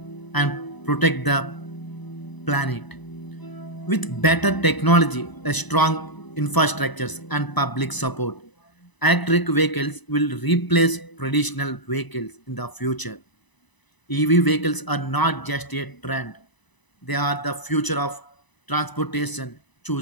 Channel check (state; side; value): late; right; 1.0 ms